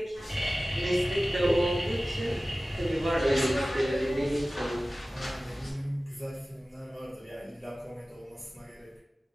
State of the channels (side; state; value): both; normal; correlation 0.97